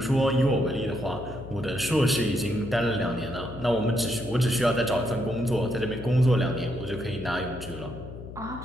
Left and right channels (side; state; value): left; noise; hum, 12 dB below the sound